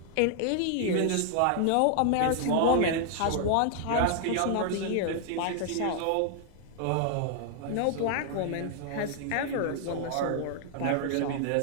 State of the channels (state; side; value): different; both; correlation 0.00